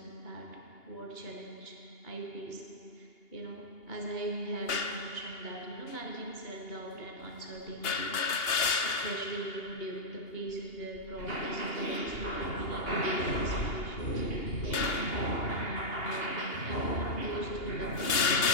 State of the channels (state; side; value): late; right; 2.8 ms